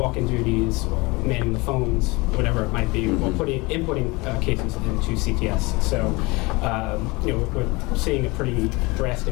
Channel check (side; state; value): right; quieter; 24.7 dB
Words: duties or manning the phones, whatever it might be, or inputting cases into CTS. So, we're seeing a pretty